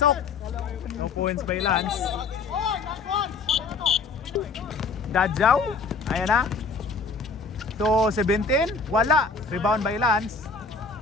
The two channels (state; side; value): quieter; right; 4.4 dB